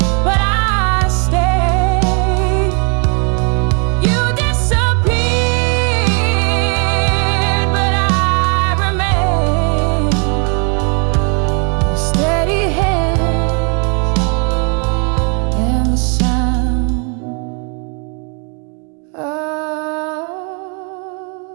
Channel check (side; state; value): left; quieter; 37.0 dB